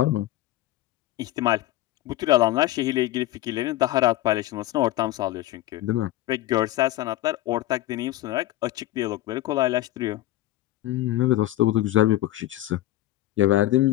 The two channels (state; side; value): quieter; right; 15.3 dB